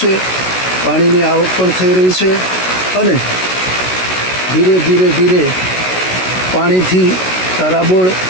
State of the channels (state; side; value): late; right; 16 ms